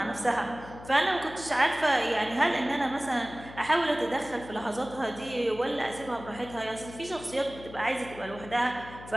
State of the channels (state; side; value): noise; left; hum, 16 dB below the sound